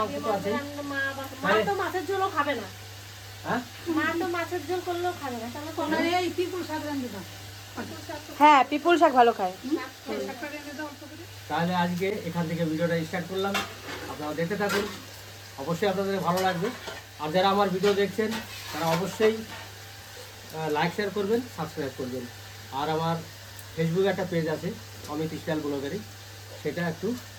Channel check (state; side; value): identical; both; correlation 1.00